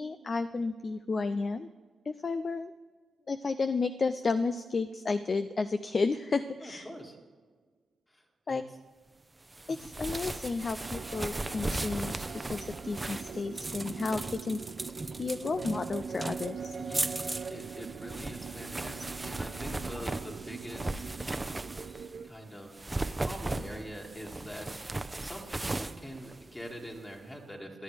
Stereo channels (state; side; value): normal; both; correlation 0.91